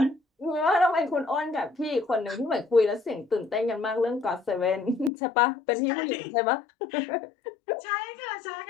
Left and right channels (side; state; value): right; drops out; at 5.1 s